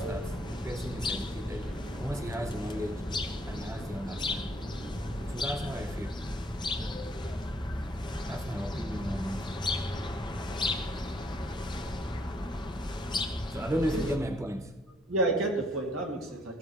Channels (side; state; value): both; normal; correlation 0.67